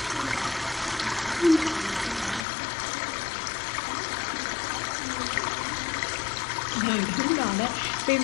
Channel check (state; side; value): drops out; right; at 2.5 s